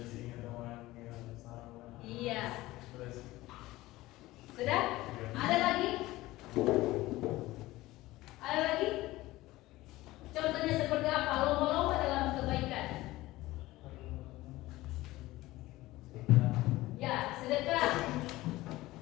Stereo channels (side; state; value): right; quieter; 18.0 dB